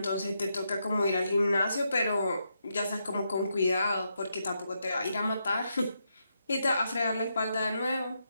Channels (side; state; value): both; inverted; correlation -0.82